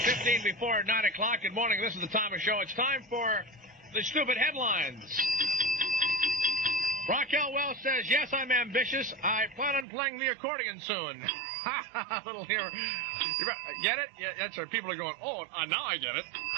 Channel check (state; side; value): drops out; left; at 9.9 s